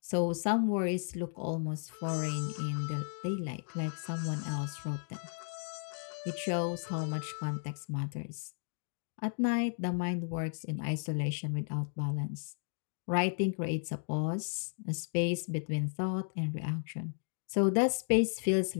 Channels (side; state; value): right; silent; 55 dB below the other